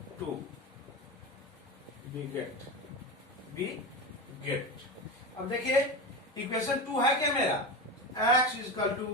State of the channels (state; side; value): normal; both; correlation 0.22